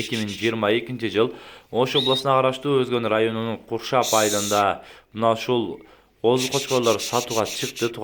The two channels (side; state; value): both; identical; correlation 1.00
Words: жыл Ош областына караштуу Өзгөн районунун Куршап айылында мына ушул козу кочкорлор сатууга чыкты.